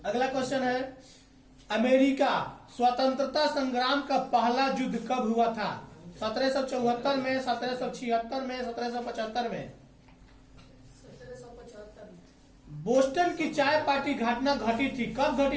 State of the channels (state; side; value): identical; both; correlation 1.00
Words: अगला क्वेश्चन है, अमेरिका स्वतंत्रता संग्राम का पहला युद्ध कब हुआ था? 1774 में, 1776 में, 1775 में? 1775 में। बोस्टन की चाय पार्टी घटना घटी थी, कब